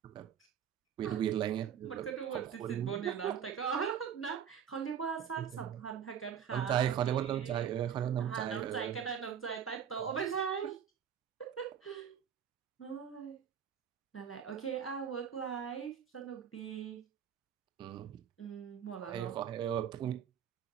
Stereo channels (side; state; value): left; quieter; 8.4 dB